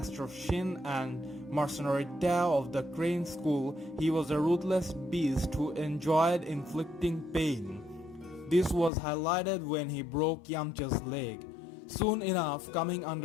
Shin and mercenary Tao of the Crane School, he was a ruthless beast who enjoyed inflicting pain. This was highlighted when he broke Yamcha's leg. Soon enough, coming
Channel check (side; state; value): right; drops out; at 8.9 s